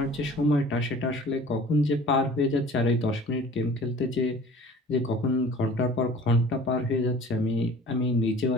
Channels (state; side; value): normal; both; correlation 0.46